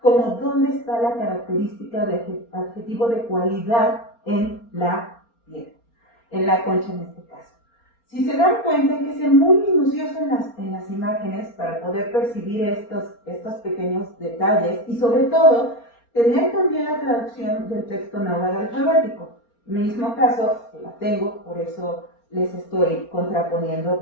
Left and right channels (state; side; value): late; right; 4.3 ms